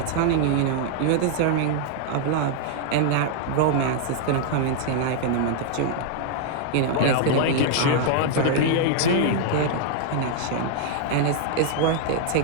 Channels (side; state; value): both; different; correlation -0.01